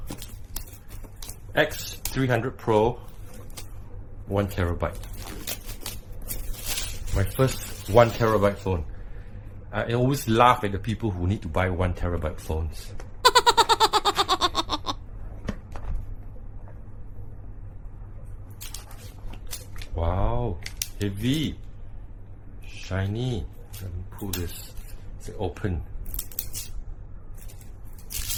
X300 Pro 1TB. My first 1TB phone. I always laugh at the people who need to buy 1TB phones. Wow, heavy, shiny. Let me pull this. It's open.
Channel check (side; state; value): both; identical; correlation 1.00